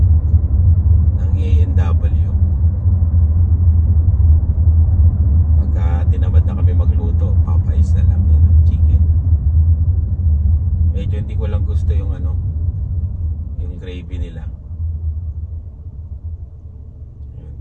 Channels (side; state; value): both; identical; correlation 1.00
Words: ng A&W. Pagka tinamad na kami magluto, Popeyes na lang yun, chicken. Medyo hindi ko lang gusto yung yung gravy nila.